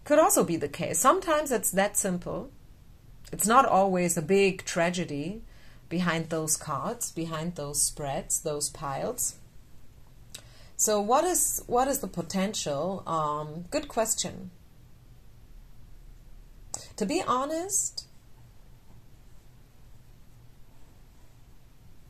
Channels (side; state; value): both; identical; correlation 1.00